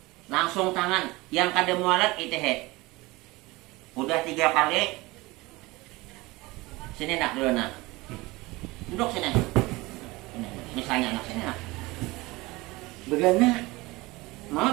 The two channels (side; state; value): left; quieter; 21.9 dB